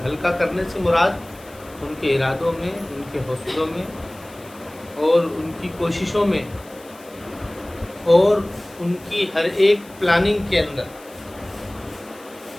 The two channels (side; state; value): left; noise; hiss, 23 dB below the sound